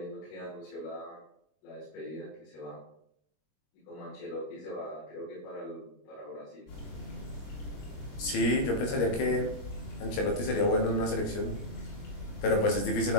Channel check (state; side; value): late; right; 21 ms